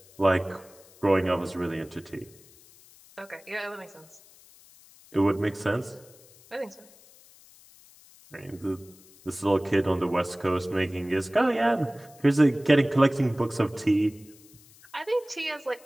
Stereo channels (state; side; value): noise; left; hiss, 25 dB below the sound